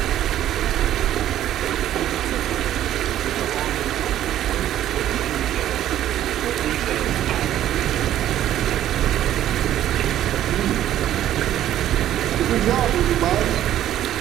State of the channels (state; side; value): quieter; left; 12.2 dB